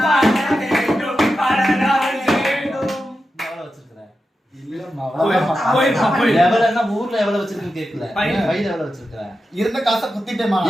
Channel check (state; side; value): normal; both; correlation 0.90